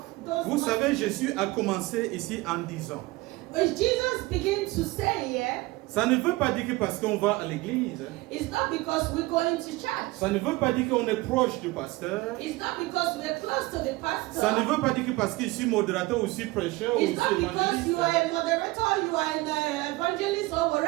those. Vous savez, Jésus a commencé ici en disant, Jesus began to say here, ça ne veut pas dire que parce qu'on va à l'église, it's not because we're going to church. ça ne veut pas dire qu'on est proche du pasteur, It's not because we're close to the pastor. ça ne veut pas dire que parce que je suis modérateur ou je suis prêcheur ou je It's not suis because you are évangéliste. a moderator, you are an evangelist or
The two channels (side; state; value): left; quieter; 21.1 dB